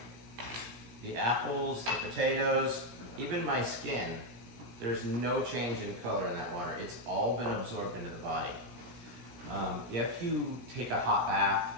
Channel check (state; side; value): late; left; 17 ms